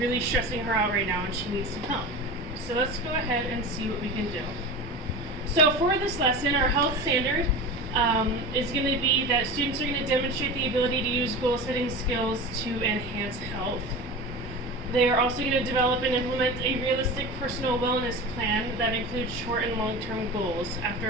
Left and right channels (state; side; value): normal; both; correlation 0.30